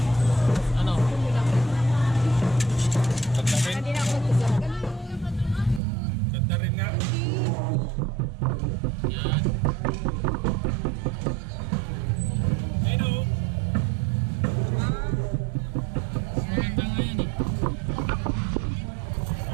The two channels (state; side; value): drops out; left; at 5.8 s